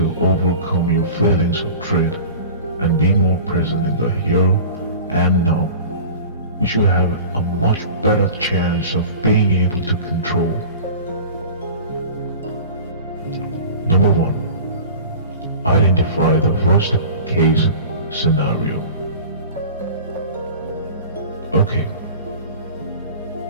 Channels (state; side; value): inverted; both; correlation -0.38